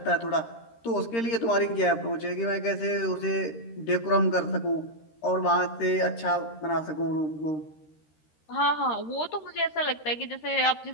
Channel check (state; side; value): late; right; 13 ms